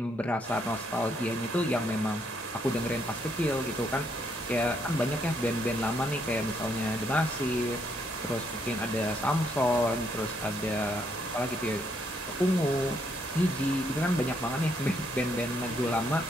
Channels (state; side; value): normal; both; correlation 0.73